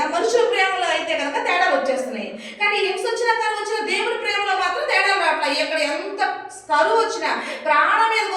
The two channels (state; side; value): identical; both; correlation 1.00